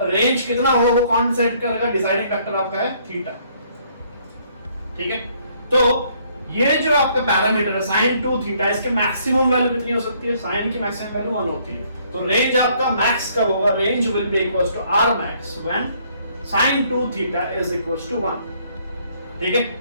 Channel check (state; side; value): inverted; both; correlation -0.65